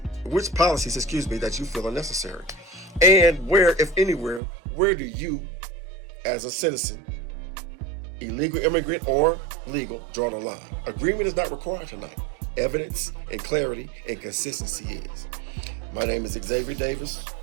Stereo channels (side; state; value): left; drops out; at 4.4 s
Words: you feel are necessary, and where, if anywhere, where do you, as a citizen, illegal immigrant or legal, draw the line. Agreement is not required tonight. Evidence and clarity and consistency is. My name is Xavier Davis.